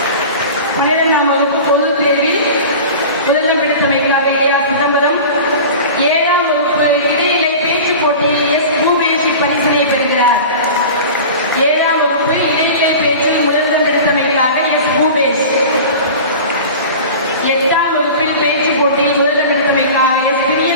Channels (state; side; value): inverted; both; correlation -0.35